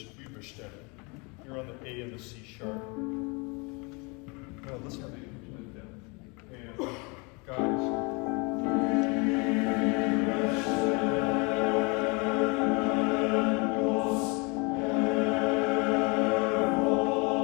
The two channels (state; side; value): quieter; right; 29.9 dB